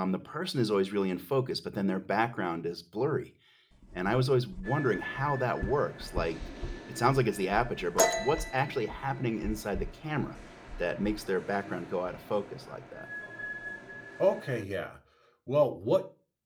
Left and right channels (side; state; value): both; identical; correlation 1.00